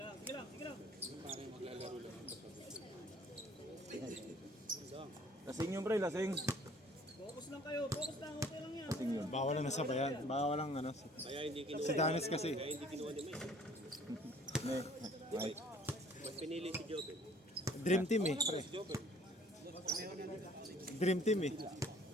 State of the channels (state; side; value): normal; both; correlation 0.55